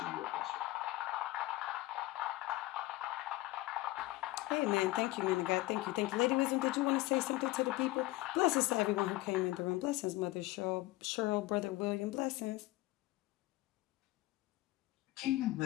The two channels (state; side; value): quieter; right; 18.5 dB